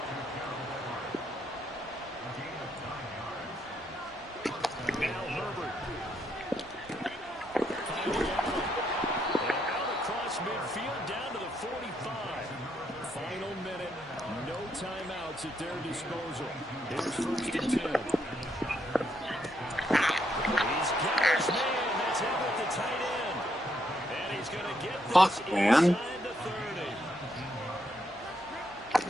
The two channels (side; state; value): both; normal; correlation 0.76